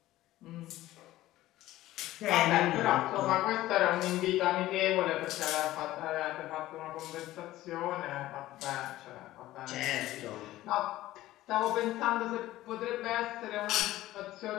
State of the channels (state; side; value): quieter; right; 15.7 dB